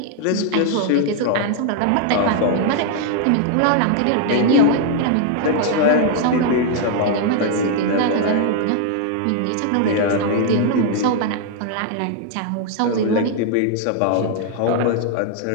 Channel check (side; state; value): both; different; correlation 0.00